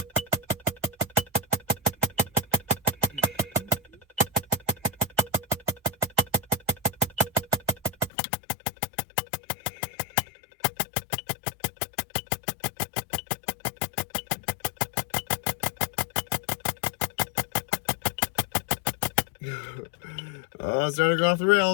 Oh, it's starting to go off the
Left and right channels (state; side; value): drops out; right; at 8.1 s